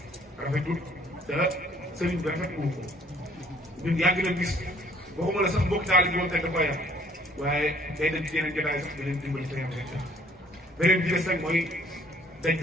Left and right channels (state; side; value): normal; both; correlation 0.60